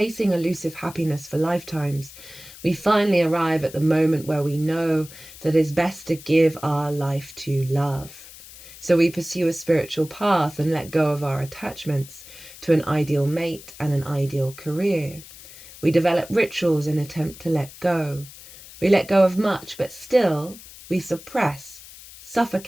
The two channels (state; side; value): noise; left; hiss, 18 dB below the sound